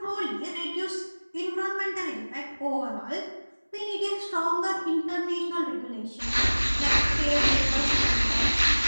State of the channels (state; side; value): inverted; both; correlation -1.00